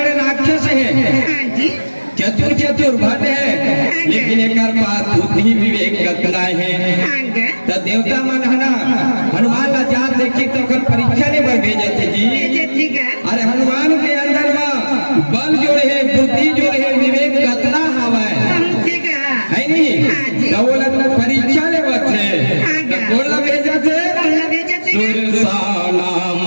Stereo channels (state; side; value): inverted; both; correlation -1.00